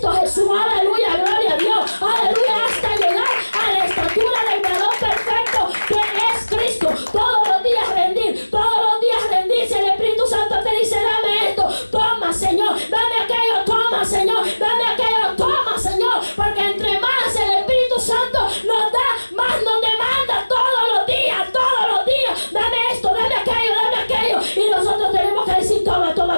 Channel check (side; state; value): both; inverted; correlation -1.00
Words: Jesús, aleluya, gloria a Dios, aleluya, hasta llegar a la estatura del varón perfecto que es Cristo. Todos los días rendirse. El Espíritu Santo te dice, dame esto, toma, Señor, dame aquello, toma, Señor, dame aquello, toma, Señor, porque entre más el Espíritu Santo nos da, más nos demanda todos los días, dame esto, dame aquello, y nosotros tenemos que decir, toma.